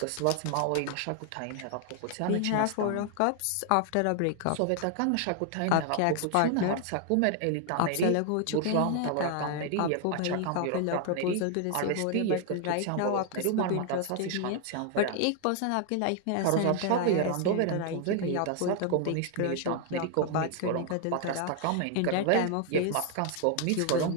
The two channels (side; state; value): both; different; correlation 0.00